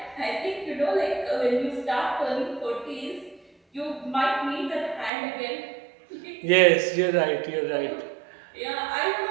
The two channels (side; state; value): left; drops out; at 5.1 s